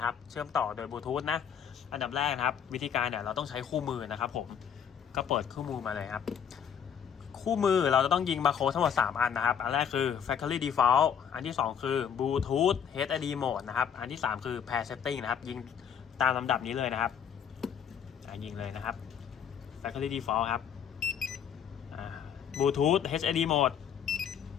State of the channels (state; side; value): quieter; right; 8.1 dB